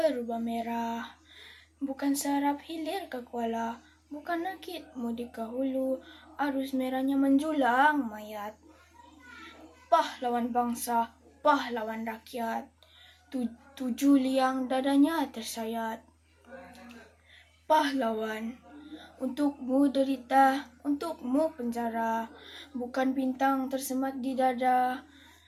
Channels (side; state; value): both; identical; correlation 1.00